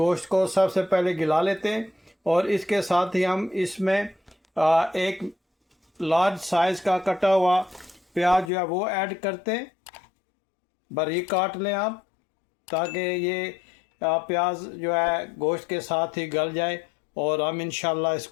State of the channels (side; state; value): right; drops out; at 8.5 s